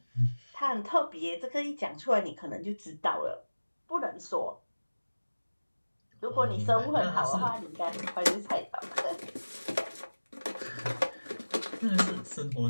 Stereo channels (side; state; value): both; inverted; correlation -1.00